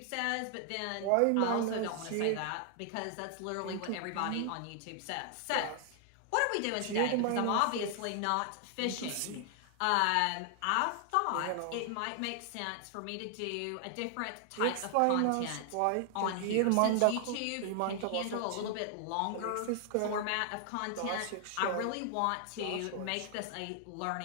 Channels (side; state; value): both; different; correlation 0.00